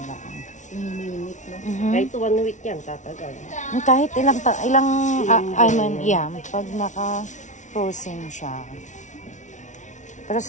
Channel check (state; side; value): late; right; 0.36 ms